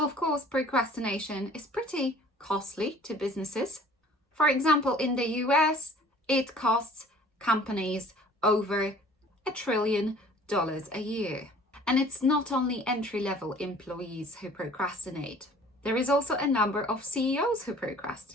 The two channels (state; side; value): normal; both; correlation 0.51